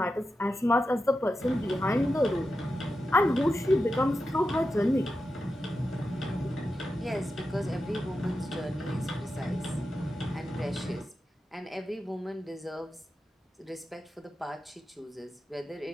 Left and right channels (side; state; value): both; normal; correlation 0.90